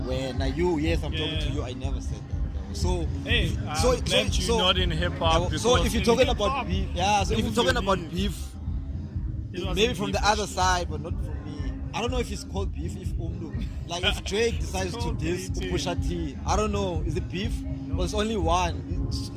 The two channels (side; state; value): both; identical; correlation 1.00